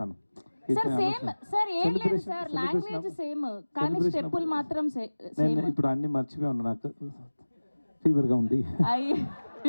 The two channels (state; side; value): inverted; both; correlation -1.00